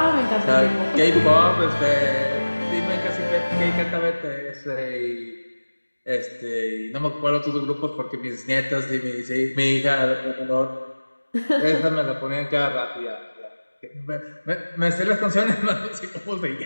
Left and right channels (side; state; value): both; inverted; correlation -1.00